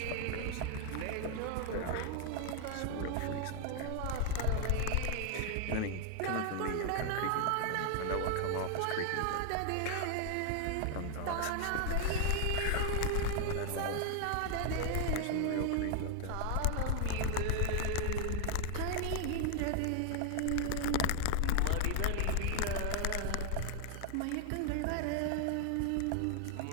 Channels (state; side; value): different; both; correlation 0.00